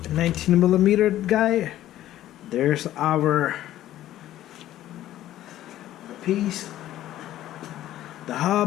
19mm guy. There's our piece. The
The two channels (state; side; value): quieter; right; 13.4 dB